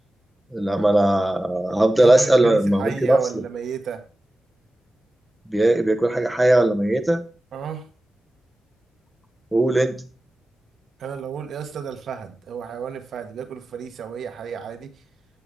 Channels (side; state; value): both; normal; correlation 0.95